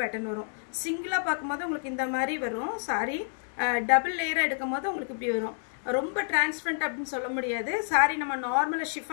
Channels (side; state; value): right; silent; digital silence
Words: பேட்டர்ன் வரும். சிங்கிளாக பார்க்கும்போது உங்களுக்கு இந்த மாதிரி வரும். சாரி டபுள் லேயராக எடுக்கும் போது உங்களுக்கு இப்படி வரும். ரொம்ப டிரான்ஸ்பரண்ட் அப்படின்னு சொல்ல முடியாது. சாரி நம்ம நார்மலாக